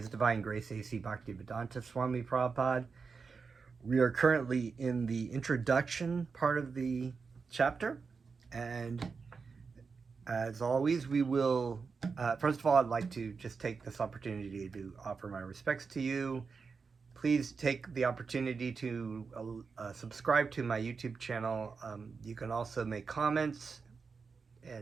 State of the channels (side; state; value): left; quieter; 5.1 dB